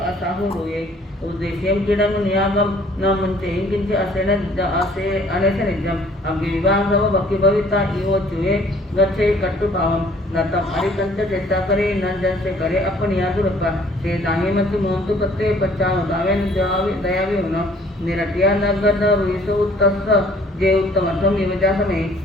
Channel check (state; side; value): normal; both; correlation 0.57